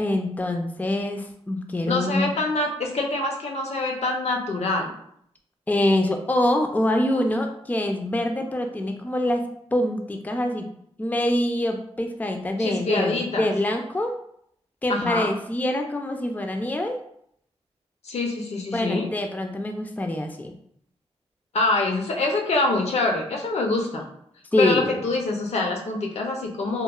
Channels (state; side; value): normal; both; correlation 0.67